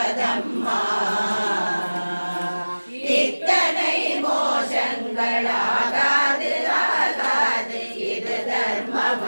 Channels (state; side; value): inverted; both; correlation -1.00